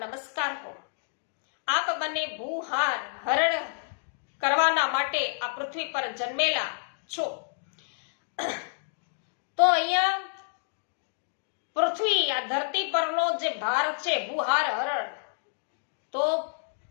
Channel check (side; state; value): right; silent; digital silence